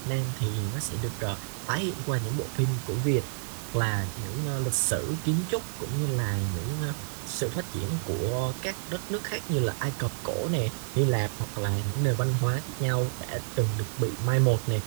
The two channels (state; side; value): silent; left; digital silence